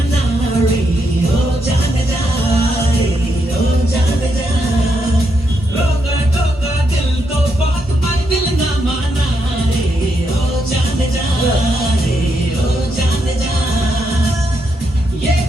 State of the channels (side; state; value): both; normal; correlation 0.80